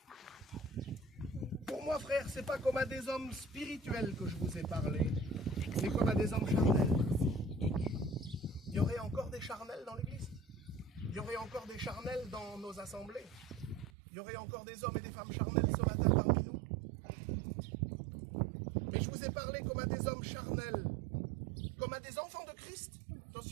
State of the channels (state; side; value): drops out; left; at 13.9 s